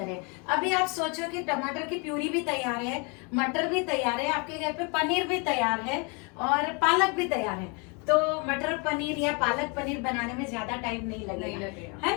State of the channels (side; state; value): right; quieter; 31.7 dB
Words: है। अभी आप सोचो कि टमाटर की प्यूरी भी तैयार है, मटर भी तैयार है, आपके घर पे पनीर भी तैयार है और पालक भी तैयार है, तो मटर पनीर या पालक पनीर बनाने में ज्यादा टाइम नहीं लगेगा,